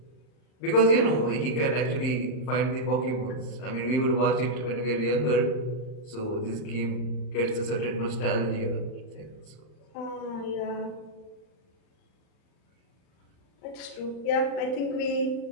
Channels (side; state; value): right; late; 38 ms